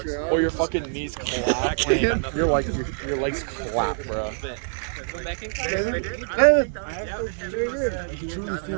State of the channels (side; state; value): left; silent; 62 dB below the other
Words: Or your fucking knees clap. You're like, your legs clap, bro.